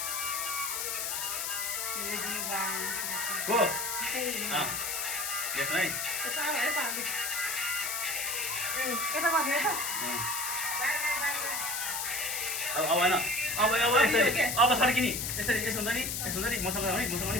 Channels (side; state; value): left; noise; hiss, 1 dB below the sound